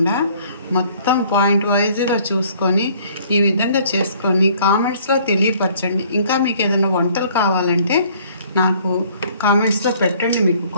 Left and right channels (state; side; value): inverted; both; correlation -0.58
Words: మొత్తం పాయింట్ వైజ్గా చూసుకొని ఈ విధంగా చేసుకొని కామెంట్స్లో తెలియపరచండి. ఇంకా మీకు ఏదైనా వంటలు కావాలంటే నాకు కామెంట్స్లో పెట్టండి. మీకు